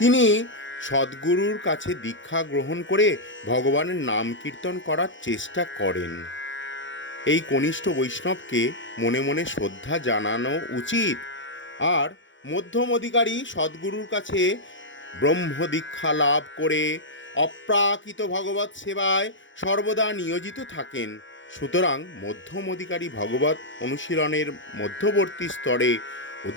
তিনি সদ্গুরুর কাছে দীক্ষা গ্রহণ করে ভগবানের নাম কীর্তন করার চেষ্টা করেন। এই কনিষ্ঠ বৈষ্ণবকে মনে মনে শ্রদ্ধা জানানো উচিত। আর মধ্যম অধিকারী সদ্গুরুর কাছে ব্রহ্ম দীক্ষা লাভ করে অপ্রাকৃত ভগবত সেবায় সর্বদা নিয়োজিত থাকেন। সুতরাং মধ্যম অধিকারী ভগবত অনুশীলনের মধ্যবর্তী স্তরে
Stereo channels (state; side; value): late; right; 0.55 ms